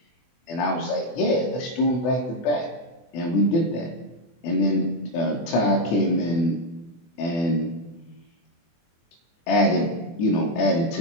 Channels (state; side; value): late; right; 24 ms